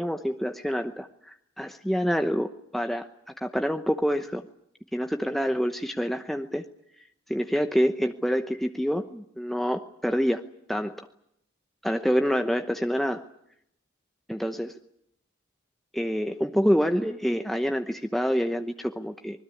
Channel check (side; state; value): both; normal; correlation 0.97